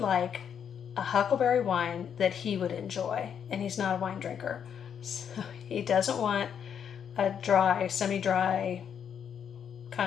like a huckleberry wine that he would enjoy, and he's not a wine drinker. So he doesn't want a dry, semi-dry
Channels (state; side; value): quieter; right; 8.1 dB